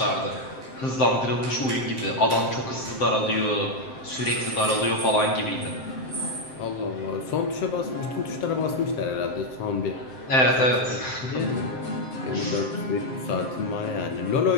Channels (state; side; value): late; right; 7.7 ms